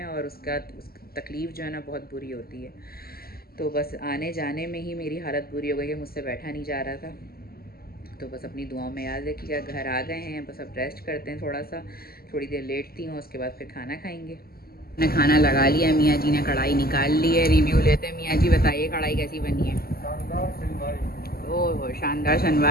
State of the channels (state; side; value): late; right; 0.44 ms